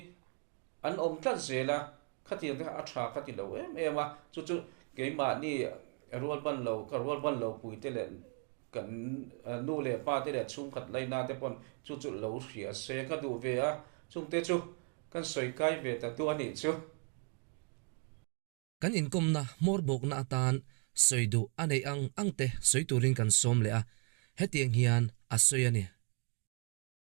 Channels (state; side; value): quieter; left; 36.1 dB